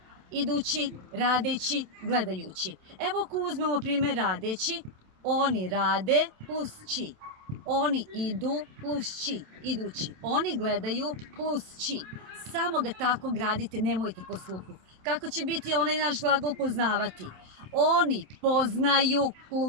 Idući, radeći, gledajući. Evo ako uzmemo primjer radeći, oni rade plus ći. Oni idu plus ći, idući. Oni gledaju plus ći. Samo ga tako gradite, nemojte po sluhu. Kako će biti onaj naš glagol poznavati? Oni poznaju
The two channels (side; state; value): left; late; 27 ms